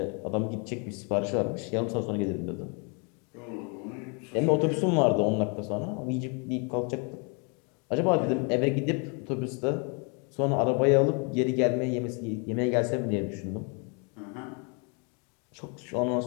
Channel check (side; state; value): right; quieter; 35.6 dB